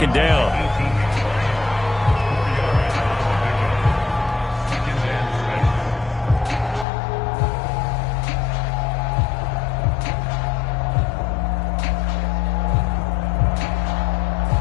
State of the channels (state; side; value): drops out; right; at 6.9 s